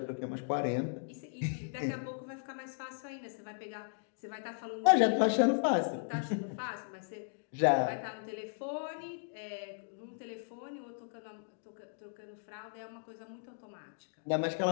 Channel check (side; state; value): right; silent; digital silence